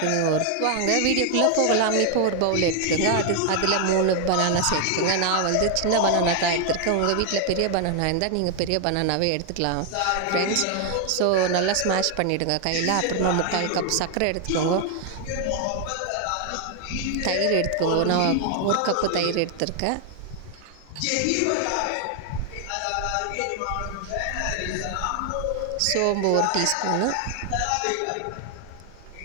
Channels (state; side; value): different; both; correlation 0.00